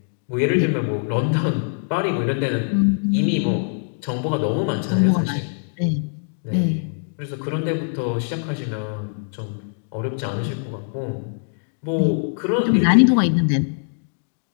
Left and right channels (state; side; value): silent; right; digital silence